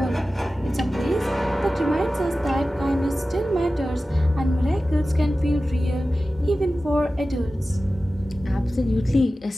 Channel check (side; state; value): both; normal; correlation 0.95